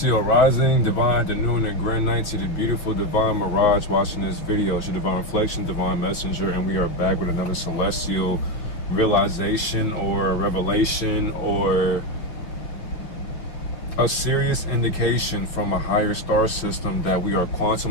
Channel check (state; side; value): late; right; 5.9 ms